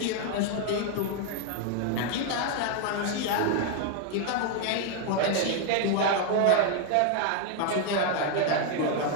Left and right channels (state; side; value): different; both; correlation 0.00